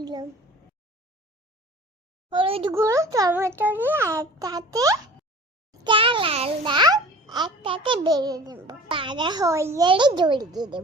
হলুদ গুঁড়ো টমেটো দিয়ে একসাথে চাল আর ডাল একসাথে বেড়ে দেব। পাড়া হয়ে গেলে জড়িয়ে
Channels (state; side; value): normal; both; correlation 0.43